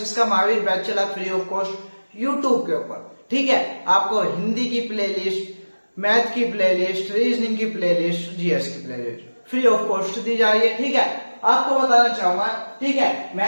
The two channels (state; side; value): inverted; both; correlation -1.00